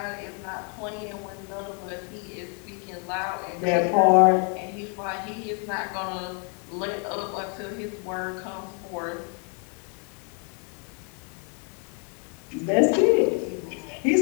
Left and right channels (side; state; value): right; quieter; 39.1 dB